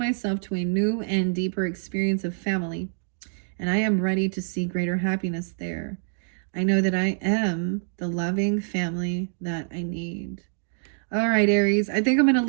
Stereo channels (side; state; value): left; silent; digital silence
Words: to a new and deeper experience of family, and I am ready to see greater happiness there. I know that I am the loving family that I need. All right, Aries. I think I'm going to